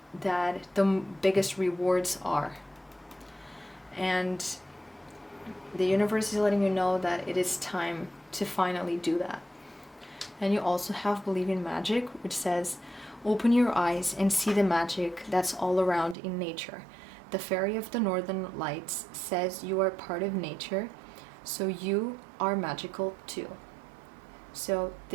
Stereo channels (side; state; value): left; drops out; at 16.2 s